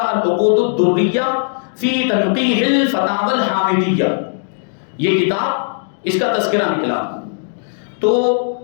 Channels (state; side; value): silent; right; digital silence